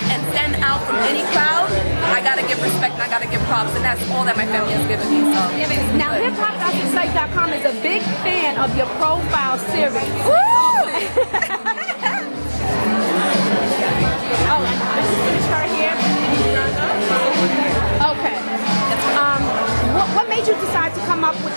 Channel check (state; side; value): inverted; both; correlation -1.00